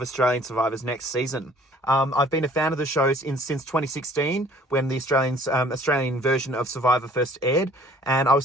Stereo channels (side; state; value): both; normal; correlation 0.55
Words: Survivors next season. I've been a fan of the show since 2016, when the Australian version of Survivor first aired, and I was